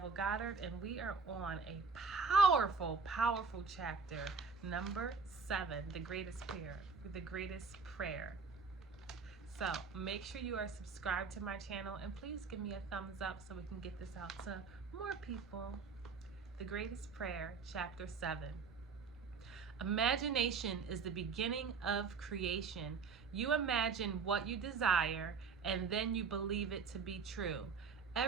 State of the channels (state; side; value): quieter; left; 5.1 dB